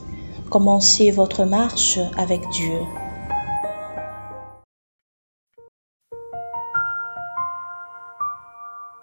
Commencez votre marche avec Dieu.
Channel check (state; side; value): inverted; both; correlation -1.00